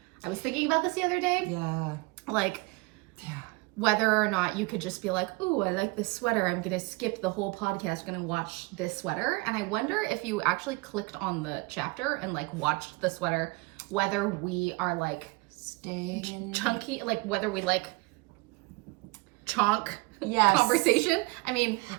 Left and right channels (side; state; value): left; quieter; 26.4 dB